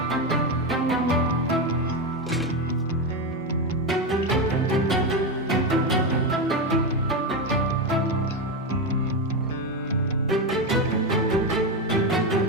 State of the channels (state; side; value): normal; both; correlation 0.12